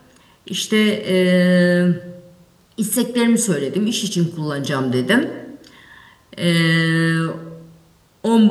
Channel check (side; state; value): both; identical; correlation 1.00